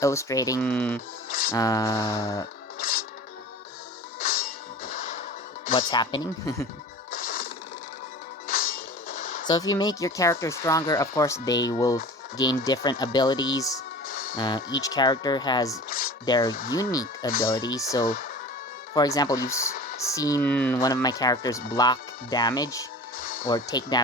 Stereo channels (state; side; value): normal; both; correlation 0.38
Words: illustrating uh, what's happening. So if you make your character stronger, of course, they will gain different abilities. Each character has their unique abilities. So, for example, you've seen one of my characters block damage, or take